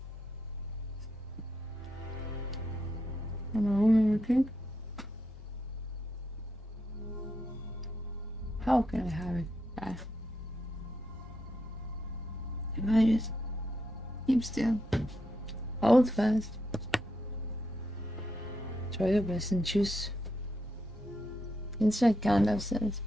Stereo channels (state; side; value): normal; both; correlation 0.82